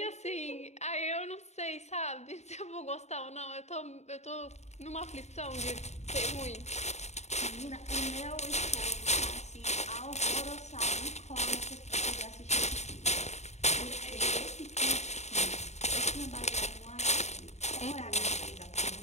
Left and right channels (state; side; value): late; right; 0.32 ms